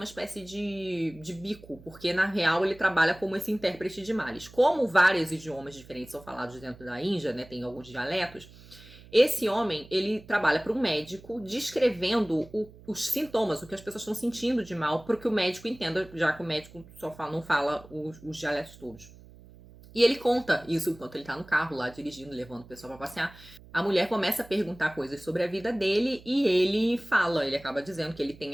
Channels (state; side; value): noise; right; hum, 21 dB below the sound